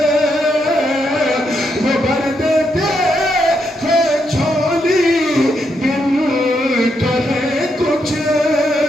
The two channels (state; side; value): normal; both; correlation 0.80